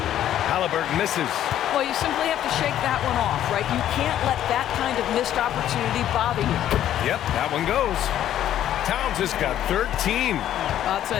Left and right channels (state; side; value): quieter; right; 11.5 dB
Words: Halliburton misses. Well, you simply have to shake that one off, right? You can't let that kind of missed opportunity bother you. Yep, that one goes. Towns has got 13. I'll